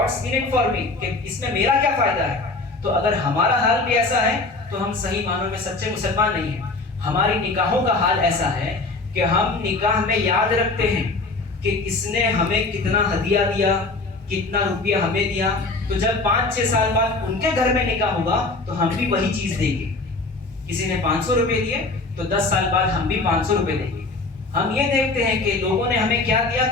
in it for me, کہ اس میں میرا کیا فائدہ ہے. تو اگر ہمارا حال بھی ایسا ہے تو ہم صحیح معنوں میں سچے مسلمان نہیں ہیں. ہماری نکاحوں کا حال ایسا ہے کہ ہم نکاح میں یاد رکھتے ہیں کہ اس نے ہمیں کتنا ہدیہ دیا, کتنا روپیہ ہمیں دیا, تو جب 5-6 سال بعد ان کے گھر میں نکاح ہوگا تو ہم بھی وہی چیز دیں گے. کسی نے 500 روپے دیے تو 10 سال بعد ہم بھی 500 روپے دیں گے. ہم یہ دیکھتے ہیں کہ لوگوں نے ہمیں کیا دیا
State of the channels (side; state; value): right; quieter; 3.4 dB